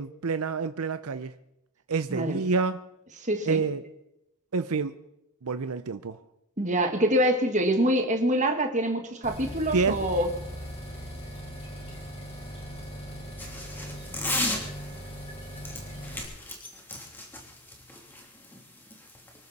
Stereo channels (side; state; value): both; normal; correlation 0.20